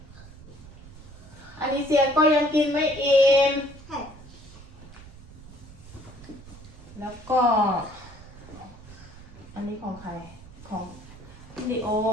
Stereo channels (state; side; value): noise; right; rumble, 18 dB below the sound